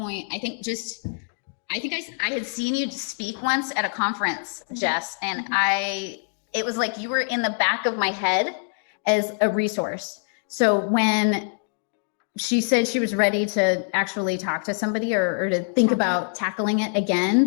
I think I had seen you speak once at a conference, Jess, and it was like you were in the back of my head as a resource. So when she said she was ready to actually talk to somebody or to think about tackling it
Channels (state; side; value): silent; right; digital silence